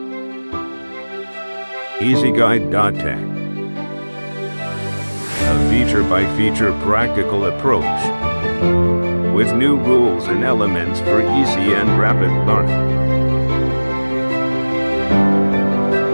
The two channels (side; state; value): both; inverted; correlation -1.00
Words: EasyGuide.tech. A feature-by-feature practical approach with new rules and elements for easy and rapid learning.